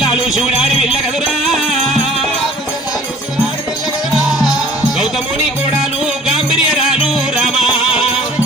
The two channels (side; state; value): both; normal; correlation 0.51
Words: శివుడాడి వెళ్ళ కదురా గౌతముని కోడాలు గాంభీర్యరాలు రామా